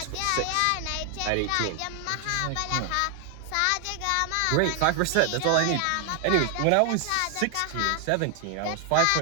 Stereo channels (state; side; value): different; both; correlation 0.00